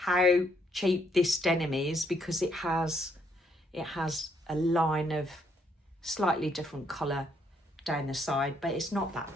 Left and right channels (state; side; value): normal; both; correlation 0.72